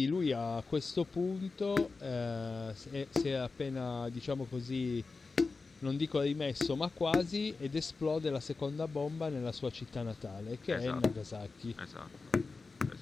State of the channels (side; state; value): right; quieter; 4.1 dB